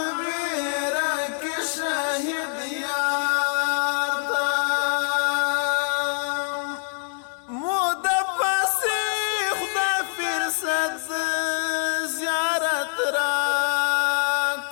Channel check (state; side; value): silent; right; 62 dB below the other